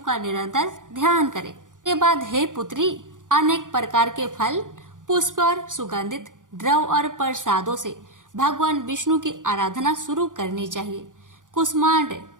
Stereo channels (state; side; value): late; left; 0.88 ms